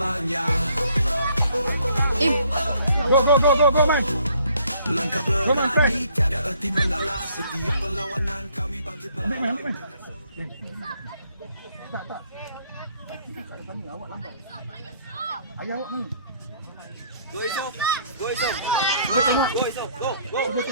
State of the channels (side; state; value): both; inverted; correlation -0.63